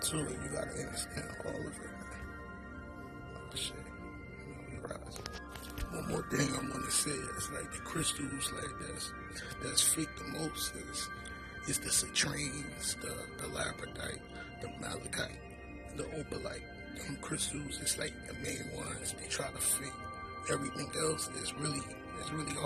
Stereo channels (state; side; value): identical; both; correlation 1.00